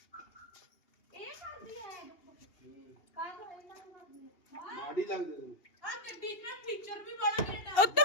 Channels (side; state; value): right; late; 2.8 ms